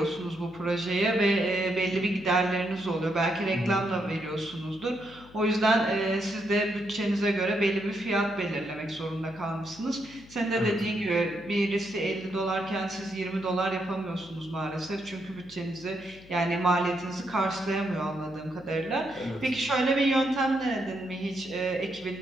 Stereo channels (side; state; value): left; noise; hum, 22 dB below the sound